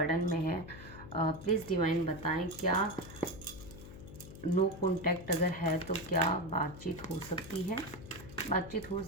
में है। प्लीज़ डिवाइन बताएं क्या नो कॉन्टैक्ट अगर है तो क्या बातचीत हो सकती है, बातचीत हो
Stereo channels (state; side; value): noise; left; hum, 14 dB below the sound